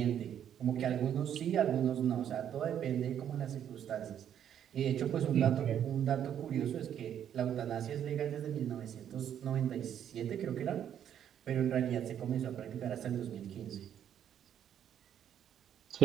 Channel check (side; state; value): left; quieter; 9.6 dB